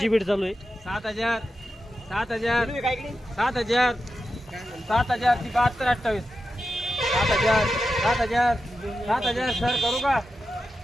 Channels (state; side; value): normal; both; correlation 0.90